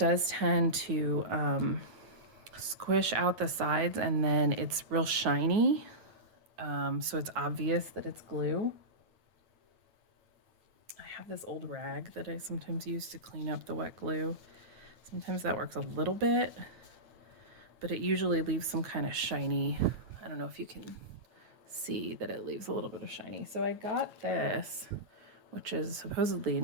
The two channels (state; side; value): late; left; 9.4 ms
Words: tend to squish out the sides and then it's real shiny. So it's obvious that it's glue. I have this old rag that I sometimes use to clean up the wet glue. Sometimes that works a little bit, but it usually leaves some kind of shiny. I don't know if you can see that it leaves a little bit of shiny. So I got this, which is supposedly